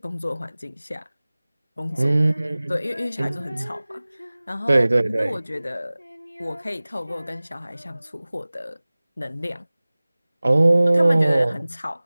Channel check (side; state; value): both; inverted; correlation -0.99